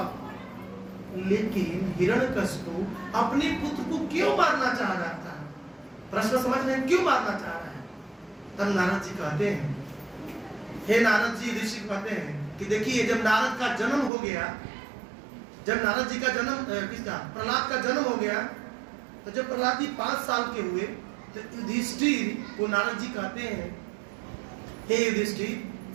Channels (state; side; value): drops out; left; at 14.1 s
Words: लेकिन हिरण्यकशिपु अपने पुत्र को क्यों मारना चाह रहा था? प्रश्न समझ रहे हैं, क्यों मारना चाह रहा है? तब नारद जी कहते हैं, हे नारद जी, ऋषि कहते हैं कि देखिए जब नारद का जन्म हो गया, जब नारद जी का जन्म किसका प्रहलाद का जन्म हो गया, तो जब प्रहलाद जी 5 साल के हुए तो युधिष्ठिर को नारद जी कहते हैं हे युधिष्ठिर,